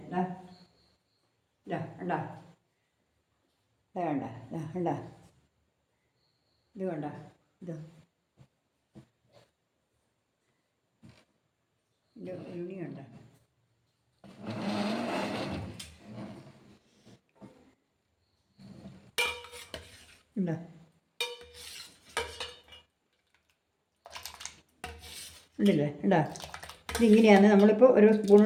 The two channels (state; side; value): identical; both; correlation 1.00